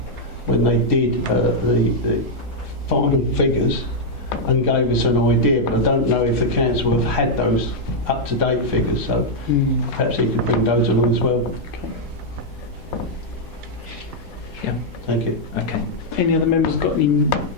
when they did the final figures and gave us an idea, but I don't know if the council have had those up-to-date figures, so perhaps he could bring those along as well. Yeah. Thank you. Okay. Any other members got any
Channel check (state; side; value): normal; both; correlation -0.03